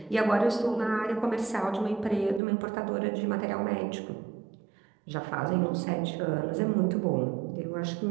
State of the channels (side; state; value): left; drops out; at 2.4 s